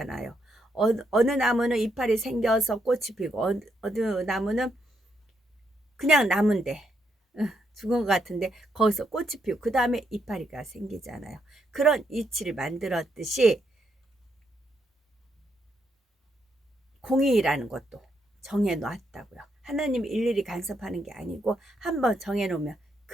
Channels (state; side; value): normal; both; correlation 0.78